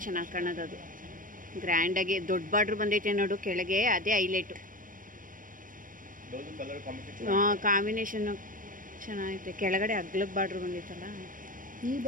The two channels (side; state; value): left; late; 0.40 ms